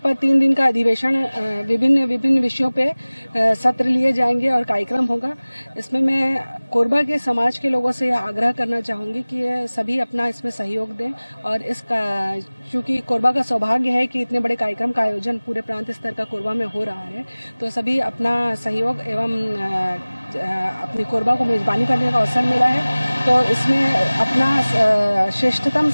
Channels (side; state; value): both; inverted; correlation -1.00